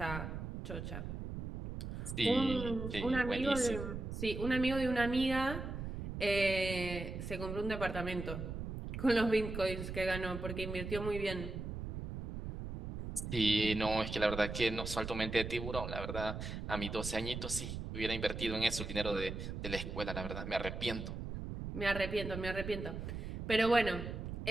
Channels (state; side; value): noise; right; rumble, 6 dB below the sound